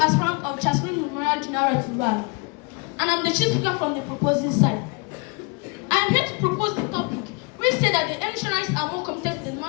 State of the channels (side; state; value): right; quieter; 31.2 dB